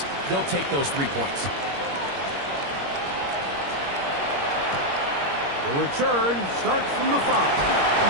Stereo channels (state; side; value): late; left; 21 ms